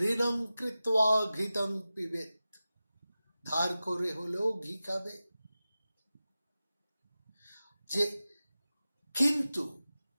ঋণং কৃত্বা ঘৃতং পিবেত, ধার করে হলেও ঘি খাবে। যে কিন্তু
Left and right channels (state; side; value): inverted; both; correlation -0.95